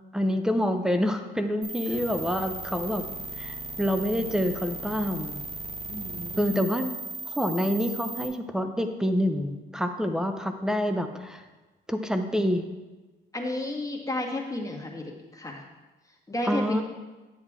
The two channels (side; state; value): both; normal; correlation 0.84